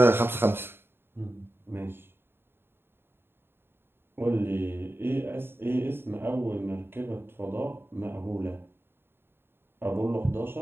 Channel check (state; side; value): late; left; 0.11 ms